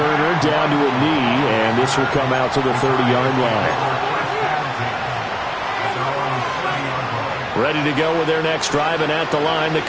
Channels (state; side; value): identical; both; correlation 1.00